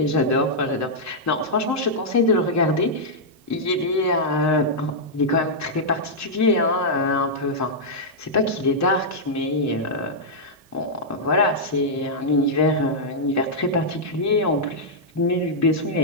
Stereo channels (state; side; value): normal; both; correlation -0.08